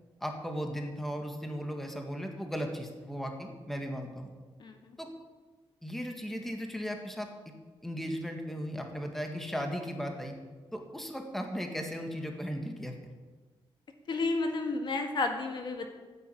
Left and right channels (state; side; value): normal; both; correlation 0.76